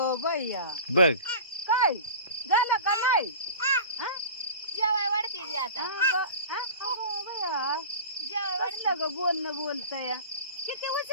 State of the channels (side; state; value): both; inverted; correlation -0.36